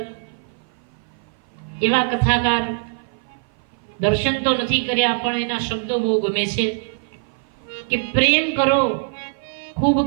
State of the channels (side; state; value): left; silent; 56 dB below the other